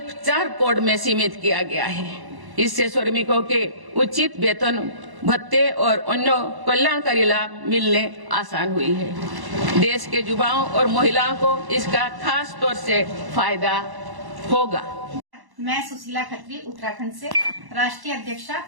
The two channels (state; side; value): late; left; 1.1 ms